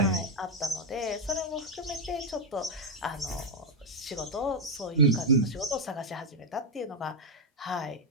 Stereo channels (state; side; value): normal; both; correlation 0.01